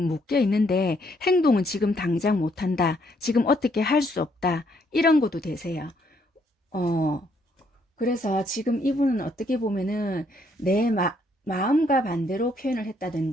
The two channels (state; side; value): normal; both; correlation 0.70